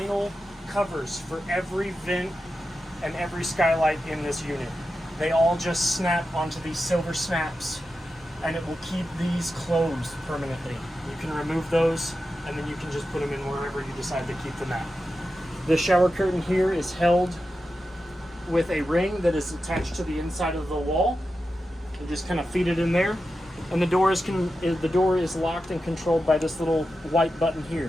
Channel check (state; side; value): normal; both; correlation 0.91